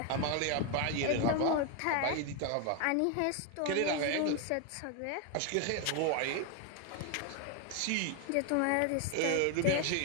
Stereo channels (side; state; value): both; different; correlation 0.01